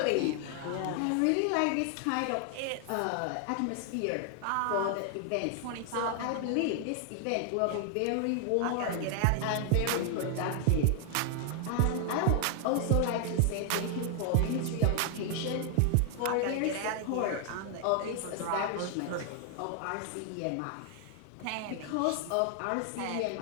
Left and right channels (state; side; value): different; both; correlation 0.00